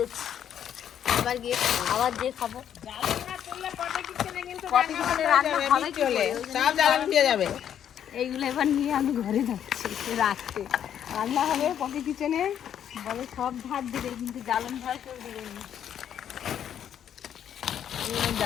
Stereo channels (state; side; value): quieter; right; 9.5 dB